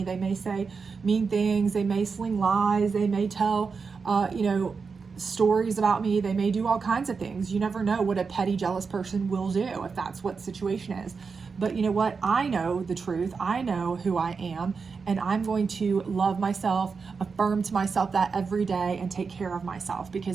They may say mean things. They may sling lies. They may tell, you know, stories about me. They may do all kinds of things. You never know what a petty, jealous person will do if that's what the situation is. But you know what? I know the truth. I know who I am, and I'm going to love myself, affirm to myself that every day, and take care of myself,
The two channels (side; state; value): left; quieter; 5.1 dB